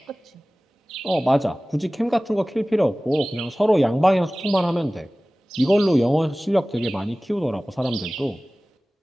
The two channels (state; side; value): normal; both; correlation 0.98